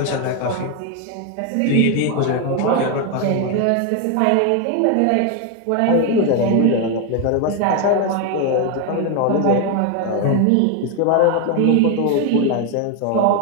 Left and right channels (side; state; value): both; different; correlation 0.01